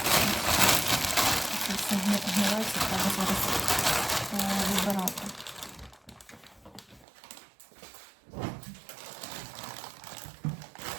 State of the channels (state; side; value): drops out; left; at 7.1 s